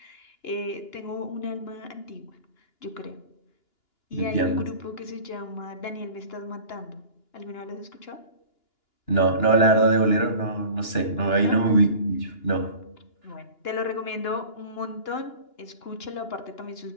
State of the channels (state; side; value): late; right; 2.9 ms